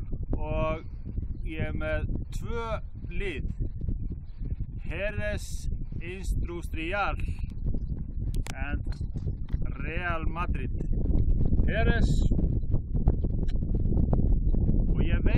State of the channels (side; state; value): both; identical; correlation 1.00